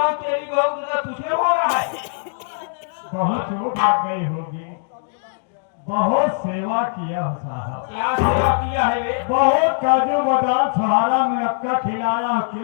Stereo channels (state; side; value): silent; right; digital silence